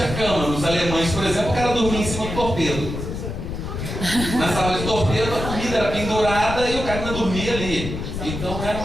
cama. Nos alemães, por exemplo, o cara dormia em cima do torpedo. Na sala de torpedo, a comida era pendurada e o cara ainda dormia ali. Então, era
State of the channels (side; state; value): left; noise; rumble, 6 dB below the sound